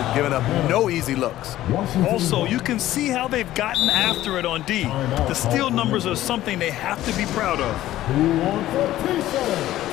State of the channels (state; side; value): quieter; right; 14.3 dB